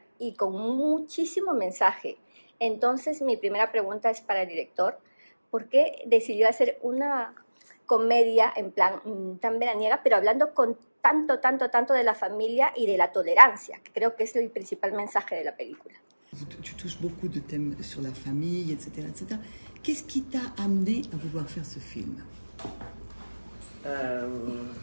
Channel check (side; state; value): both; inverted; correlation -1.00